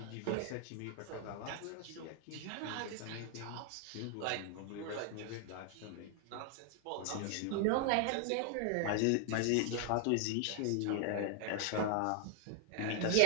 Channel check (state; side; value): different; both; correlation 0.00